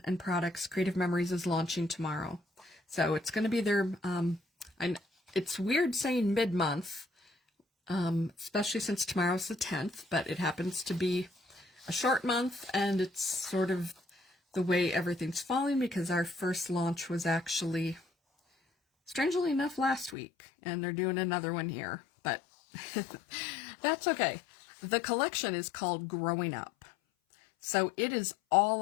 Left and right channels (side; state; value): right; drops out; at 20.2 s